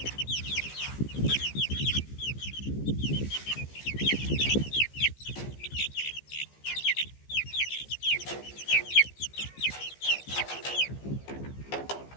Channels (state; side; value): late; right; 15 ms